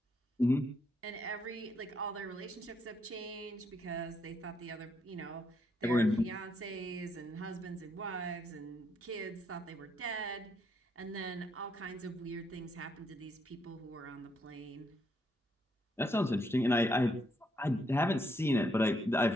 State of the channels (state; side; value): normal; both; correlation 0.75